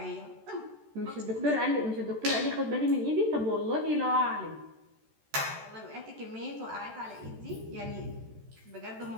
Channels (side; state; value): left; late; 14 ms